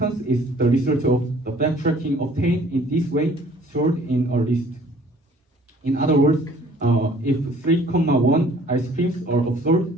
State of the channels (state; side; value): normal; both; correlation 0.55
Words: is the result of the backtracking obtained in this way stored in a list. In other words, if 3,1 ice creams are observed,